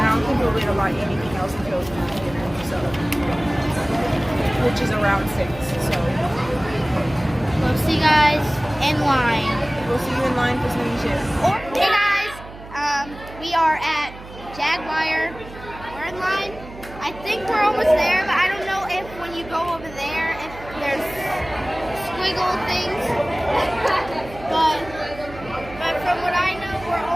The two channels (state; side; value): noise; right; hum, 16 dB below the sound